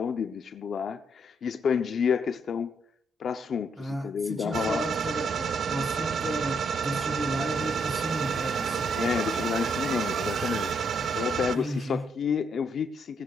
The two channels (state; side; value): normal; both; correlation 0.74